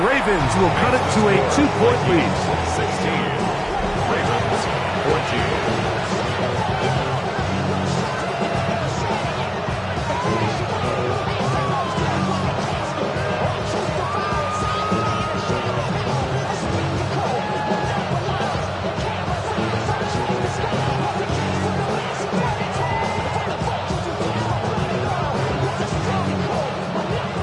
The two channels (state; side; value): identical; both; correlation 1.00